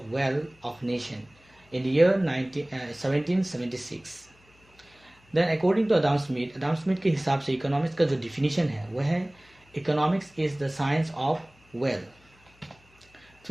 wealth of nation in the year 1776. Then according to Adam Smith के हिसाब से इकोनॉमिक्स का जो डिफिनीशन है वह है economics is the science of wealth.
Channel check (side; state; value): left; noise; hum, 30 dB below the sound